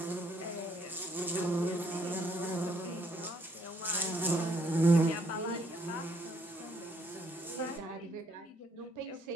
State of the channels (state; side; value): normal; both; correlation 0.69